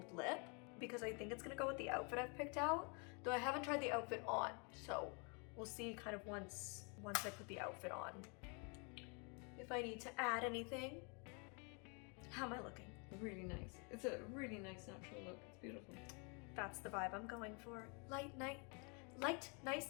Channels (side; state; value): right; quieter; 35.2 dB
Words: lip because I think it's gonna go with the outfit I've picked out, though I haven't tried the outfit on, so we'll see kind of once I put the outfit on if I need to add anything. How am I looking? Really nice. It's a really nice natural look. It's beautiful. That's the vibe I'm going for. Light,